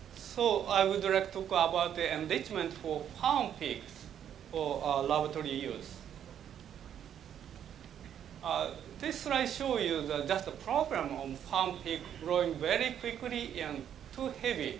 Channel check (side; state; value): left; quieter; 9.5 dB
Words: So I would like to talk about the enrichment for farm pigs for laboratory use. this slide shows you just the problem of farm pig growing very quickly and too heavy.